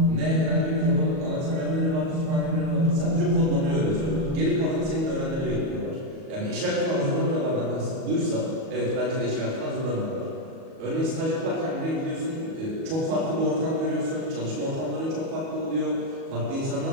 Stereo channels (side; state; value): left; late; 37 ms